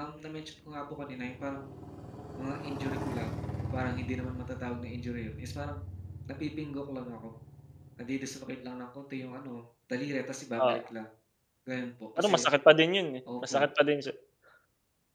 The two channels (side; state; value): both; identical; correlation 1.00